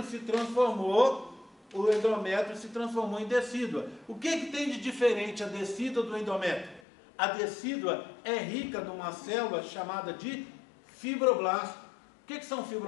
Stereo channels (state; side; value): drops out; right; at 6.8 s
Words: se transformou em decídua. O que tem de diferente a decídua do endométrio? A decídua é rica numa célula chamada de fibroblast. O que são